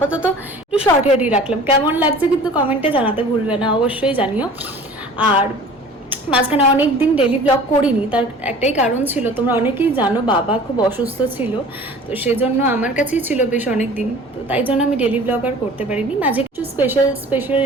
একটু শর্ট হেয়ারই রাখলাম। কেমন লাগছে কিন্তু কমেন্টে জানাতে ভুলবে না, অবশ্যই জানিও। আর মাঝখানে অনেক দিন ডেলি ব্লগ করিনি, তার একটাই কারণ ছিল, তোমরা অনেকেই জানো বাবা খুব অসুস্থ ছিল। তো সেজন্য আমার কাছেই ছিল বেশ অনেক দিন, তো তাই জন্য আমি ডেলি ব্লগ আর করতে পারিনি। মাঝে কিছু স্পেশাল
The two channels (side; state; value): both; normal; correlation 0.45